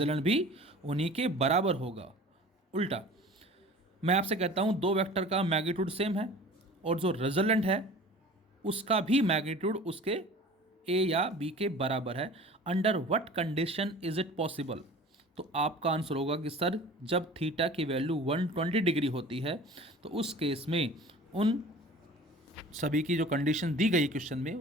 भी उन्हीं के बराबर होगा। उल्टा मैं आपसे कहता हूँ दो वेक्टर का मैग्नीट्यूड सेम है और जो रिजल्टेंट है उसका भी मैग्नीट्यूड उसके ए या बी के बराबर है, under what condition is it possible, तो आपका आंसर होगा कि सर जब थीटा की वैल्यू 120 डिग्री होती है तो उस केस में उन सभी की जो कंडीशन दी गई क्वेश्चन में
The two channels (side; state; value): both; normal; correlation 0.42